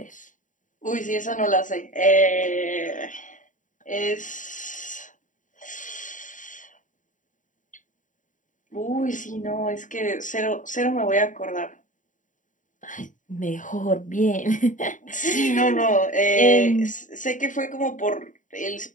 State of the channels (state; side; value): late; right; 0.37 ms